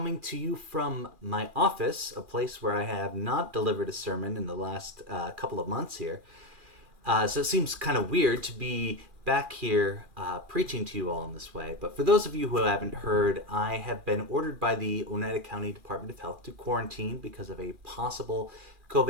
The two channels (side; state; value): left; late; 2.4 ms